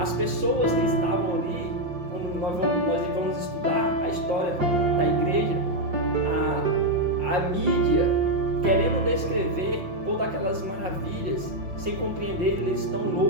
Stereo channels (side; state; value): left; late; 5.6 ms